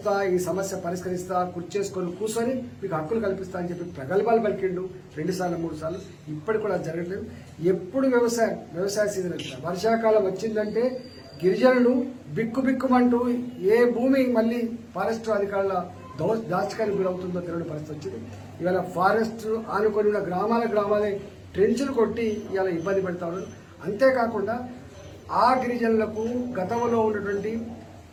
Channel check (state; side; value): identical; both; correlation 1.00